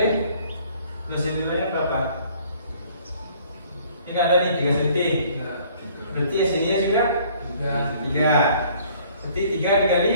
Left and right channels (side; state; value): both; inverted; correlation -0.57